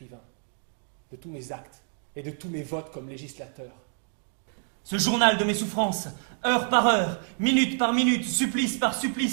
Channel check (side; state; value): left; silent; 60 dB below the other